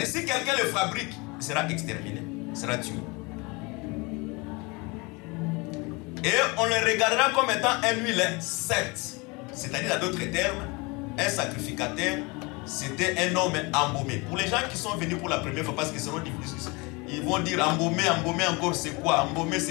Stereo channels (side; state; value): right; quieter; 27.0 dB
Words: si quelqu'un le fabrique, il sera exterminé, il sera tué. Et on le regardera comme étant un huile sainte. C'est-à-dire, à d'autres termes, un sacrificateur, c'était un homme embaumé. Pour les gens qui sont venus pour la première fois, parce qu'ils seront difficiles, ils vont dire embaumer encore c'est quoi? Embaumer